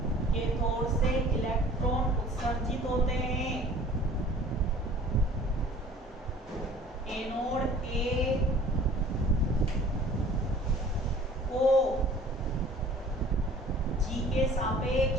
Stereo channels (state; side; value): normal; both; correlation 0.49